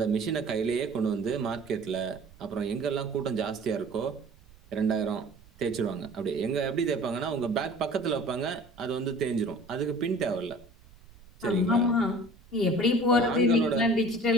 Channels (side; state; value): right; noise; rumble, 24 dB below the sound